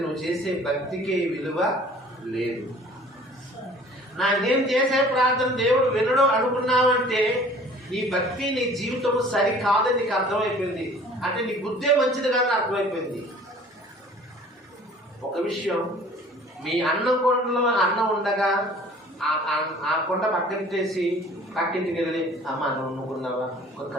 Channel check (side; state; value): both; normal; correlation 0.50